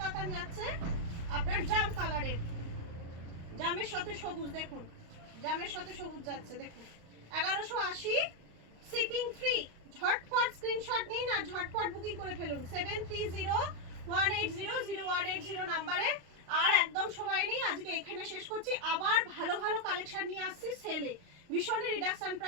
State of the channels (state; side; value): late; left; 35 ms